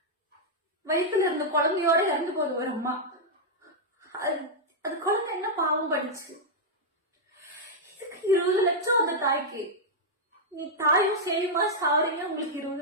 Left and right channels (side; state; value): both; normal; correlation -0.05